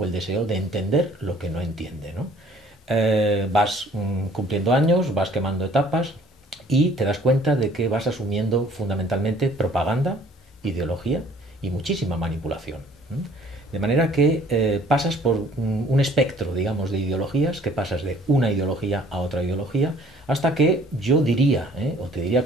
el deseo de entender lo que no entiende, ¿no? Vas cumpliendo años, vas quemando etapas y te das cuenta de que vas asumiendo fundamentalmente propaganda, ideología y muchísima manipulación. De manera que pasas por un espectro, digamos, de ideologías, que pasas de una ideología a otra ideología, hasta que yo diría, o te diría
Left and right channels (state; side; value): normal; both; correlation 0.56